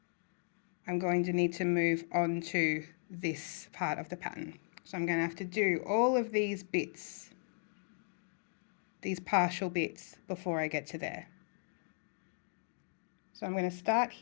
I'm going to need to move on to this part of the pattern. So I'm going to have to do all of these bits, these partial bits, before I get to there. So I'm going to start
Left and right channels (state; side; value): silent; right; digital silence